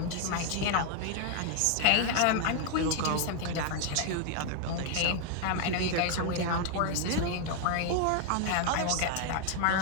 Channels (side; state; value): both; different; correlation 0.00